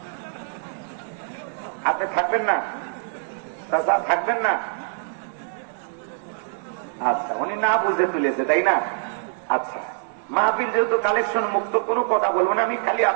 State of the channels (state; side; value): silent; left; 60 dB below the other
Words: আপনি থাকবেন না? থাকবেন না? আচ্ছা, উনি না বুঝে তুলেছে, তাই না? আচ্ছা, মাহফিল যেহেতু কালেকশন মুক্ত, কোনো কথা বলবো না আমি। খালি